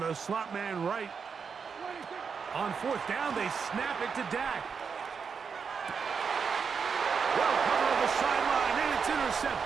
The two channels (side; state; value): left; quieter; 6.0 dB